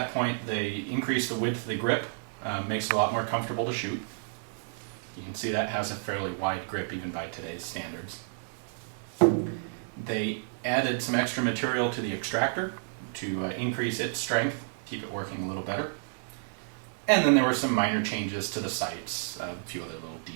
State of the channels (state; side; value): silent; left; 56 dB below the other